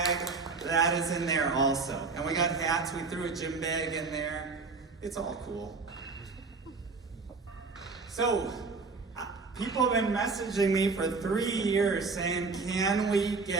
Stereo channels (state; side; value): quieter; left; 4.3 dB